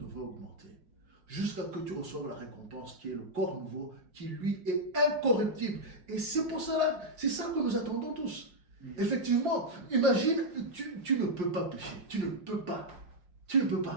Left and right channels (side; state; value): left; late; 5.6 ms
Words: augmenter. Jusqu'à ce que tu reçoives la récompense qui est le corps nouveau, qui lui est incorruptible. Et c'est pour cela, c'est ça que nous attendons tous. Effectivement, imagine, tu ne peux pas pécher. Tu ne peux pas. Tu ne peux